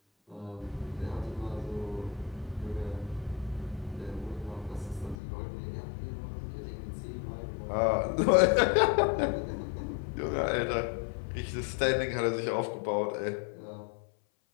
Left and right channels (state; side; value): drops out; right; at 5.2 s